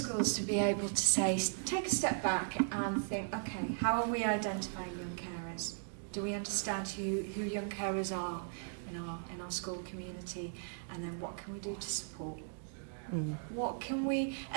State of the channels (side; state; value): left; silent; digital silence